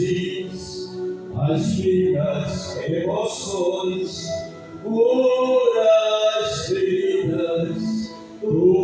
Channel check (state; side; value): identical; both; correlation 1.00